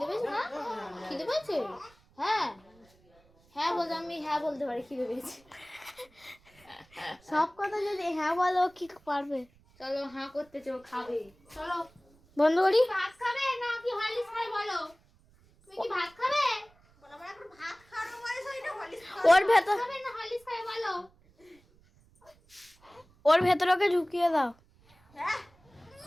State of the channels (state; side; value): noise; right; rumble, 30 dB below the sound